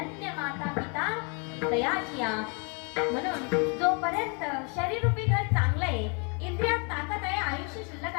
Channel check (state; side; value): quieter; right; 35.5 dB